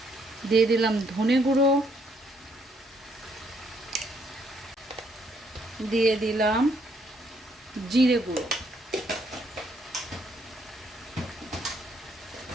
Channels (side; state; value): both; normal; correlation 0.70